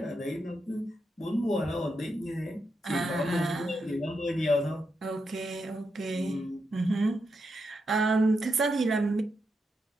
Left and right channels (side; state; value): both; normal; correlation 0.84